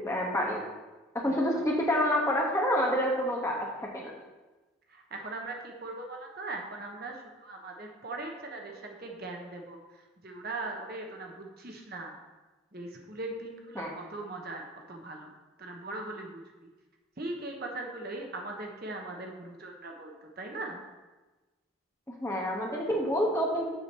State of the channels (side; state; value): both; normal; correlation 0.47